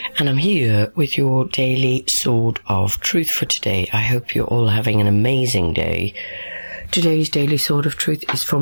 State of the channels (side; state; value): both; inverted; correlation -1.00